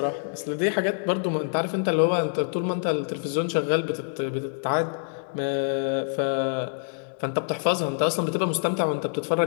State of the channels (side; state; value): right; silent; digital silence